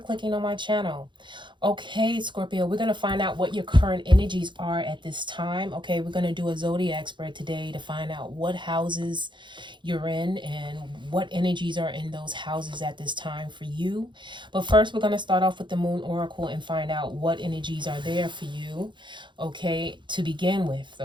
on my channel. Okay, Scorpio, we're going to find out what your current energies are at this time. Okay, we're going to do a zodiac spread today to find out what houses you're in and what energies are in those houses at this time for you. But first, we're going to start off with the Moon Oracle and find out what energies are there for you, okay, to begin with,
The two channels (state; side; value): late; left; 0.23 ms